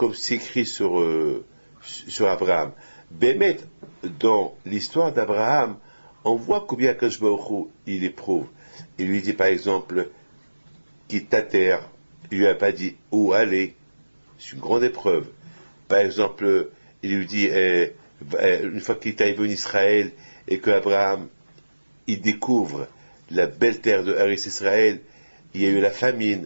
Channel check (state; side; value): inverted; both; correlation -1.00